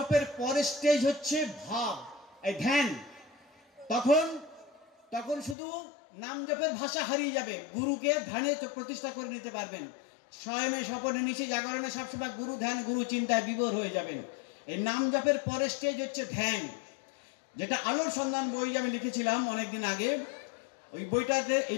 পরের স্টেজ হচ্ছে ভাব, এই ধ্যান। তখন তখন শুধু নাম জপের ভাষা হারিয়ে যাবে, গুরুকে ধ্যানে প্রতিষ্ঠা করে নিতে পারবেন। স্বয়মে স্বপনে নিচে জাগরণে সবসময় গুরু ধ্যান, গুরু চিন্তায় বিভোর হয়ে যাবেন। এই নাম জপের পরের স্টেজ হচ্ছে ধ্যান, যেটা আলোর সন্ধান বই আমি লিখেছিলাম অনেকদিন আগে, ওই বইটাতে এই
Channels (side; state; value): right; drops out; at 5.6 s